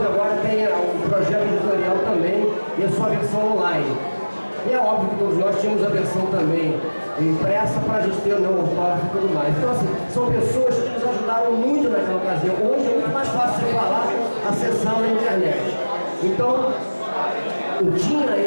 agora tem um projeto editorial também, e a sua versão online. E é óbvio que todos nós tínhamos a versão também impressa para a gente ter o meu autógrafo e tudo mais. Então, assim, são pessoas que nos ajudaram muito naquela ocasião. Hoje é muito mais fácil de falar acessando a internet. Então, eu tinha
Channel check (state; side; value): inverted; both; correlation -1.00